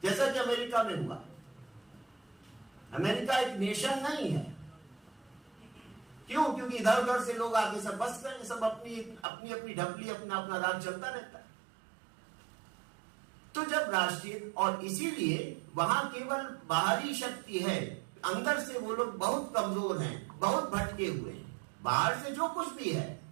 जैसा कि अमेरिका में हुआ। अमेरिका एक नेशन नहीं है। क्यों? क्योंकि इधर उधर से लोग आके सब बस गए, सब अपनी अपनी अपनी ढपली, अपना अपना राज चलता रहता है। तो जब राष्ट्रीय, और इसीलिए वहां केवल बाहरी शक्ति है, अंदर से वो लोग बहुत कमजोर हैं, बहुत भटके हुए हैं। बाहर से जो कुछ भी है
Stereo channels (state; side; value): drops out; left; at 9.2 s